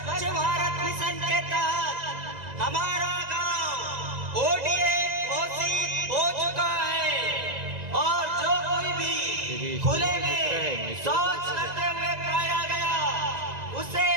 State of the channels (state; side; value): late; left; 1.9 ms